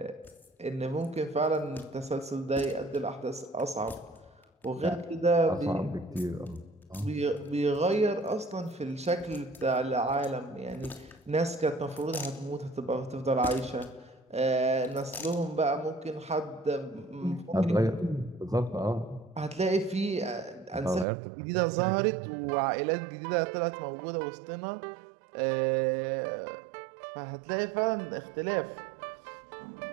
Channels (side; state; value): left; drops out; at 21.1 s